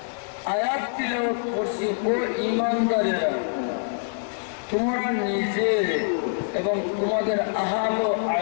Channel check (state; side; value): silent; right; 62 dB below the other